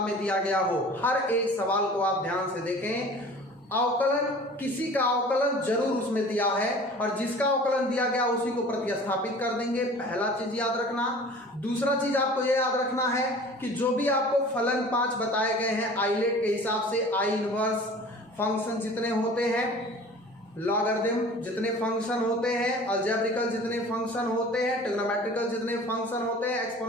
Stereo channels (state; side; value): normal; both; correlation 0.44